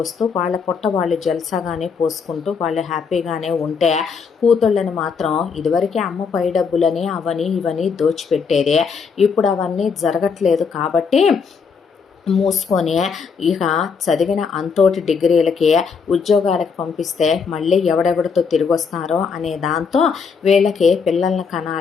వస్తూ వాళ్ళ పొట్ట వాళ్ళు జల్సాగానే పోసుకుంటూ వాళ్ళు హ్యాపీగానే ఉంటే, కూతుళ్ళని మాత్రం ఇదివరకే అమ్మ పై డబ్బులని అవని ఇవని దోచిపెట్టేదే, ఇప్పుడు అవన్నీ జరగట్లేదు కాబట్టి మూసుకొని ఇక చదివిన అంతోటి డిగ్రీలకి ఉద్యోగాలకు పంపిస్తే మళ్ళీ ఎవడెవడితో తిరిగి వస్తారో అనే దాంతో వీళ్ళకి పిల్లల్ని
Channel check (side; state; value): right; quieter; 5.7 dB